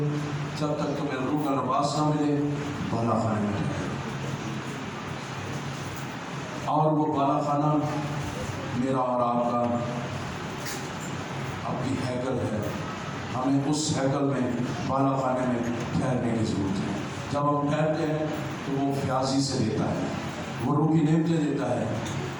جب تک تمہیں روح کا لباس نہ ملے، بالا خانے میں رہے. اور وہ بالا خانہ میرا اور آپ کا اپنی ہیکل ہے. ہمیں اس ہیکل میں بالا خانے میں ٹھہرنے کی ضرورت ہے. جب ہم ٹھہرتے ہیں تو وہ فیاضی سے دیتا ہے، وہ روح کی نعمتیں دیتا ہے،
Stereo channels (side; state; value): both; identical; correlation 1.00